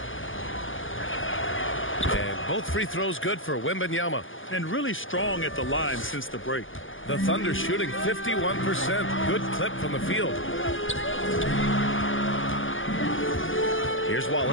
Both free throws good for Wembanyama. And really strong at the line since the break. The Thunder shooting 51%. Good clip from the field. Here's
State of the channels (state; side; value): late; right; 0.58 ms